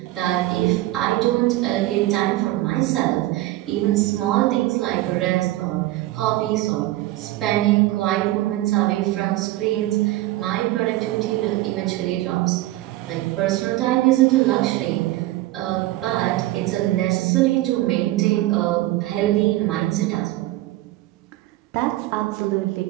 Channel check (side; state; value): left; quieter; 17.0 dB